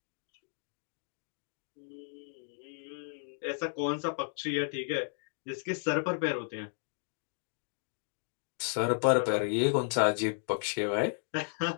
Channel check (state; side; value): silent; right; digital silence